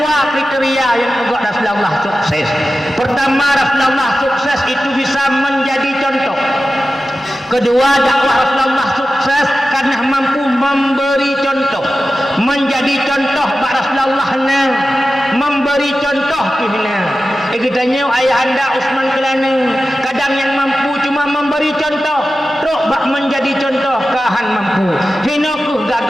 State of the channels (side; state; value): both; normal; correlation 0.94